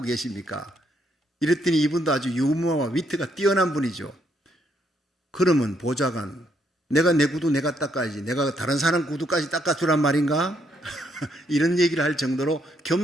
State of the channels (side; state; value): both; normal; correlation 0.73